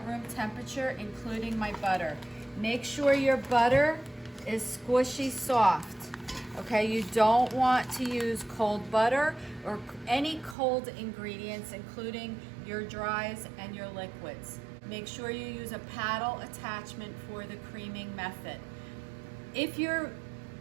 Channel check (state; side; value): drops out; left; at 10.6 s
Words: room temperature, including my butter. Make sure your butter is squishy soft, okay? You don't want to use cold butter or any cold ingredients, including your dries and your liquids. Make sure you use a paddle attachment for the creaming method. If your